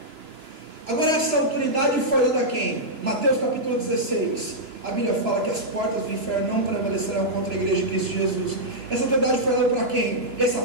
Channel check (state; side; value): late; left; 3.0 ms